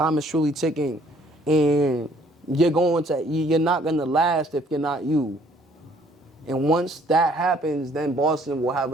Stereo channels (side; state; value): both; normal; correlation 0.61